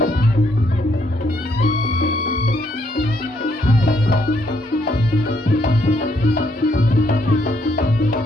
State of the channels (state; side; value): normal; both; correlation 0.72